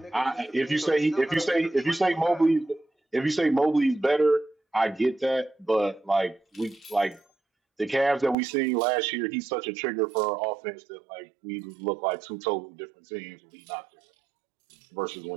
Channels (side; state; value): left; drops out; at 8.3 s